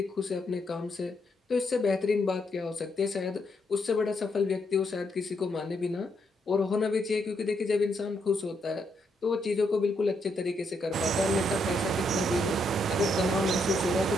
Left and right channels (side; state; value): both; normal; correlation 0.77